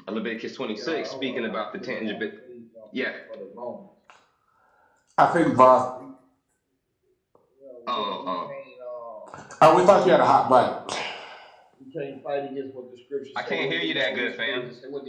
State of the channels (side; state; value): both; identical; correlation 1.00